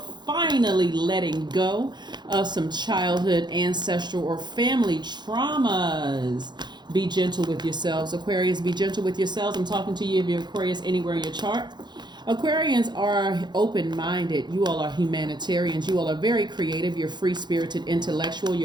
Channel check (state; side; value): late; left; 0.21 ms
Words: finally letting go of some childhood, ancestral, or family traumas. Be gentle with yourselves, Aquarius. Be gentle with yourselves. I'm talking to you if you're Aquarius anywhere in your chart. Aquarians are open-minded. You all are humanitarians. You all are very creative. You're free-spirited, intellectual.